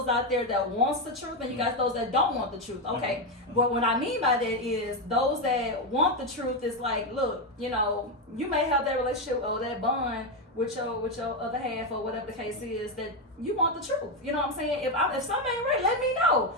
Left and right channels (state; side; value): normal; both; correlation 0.08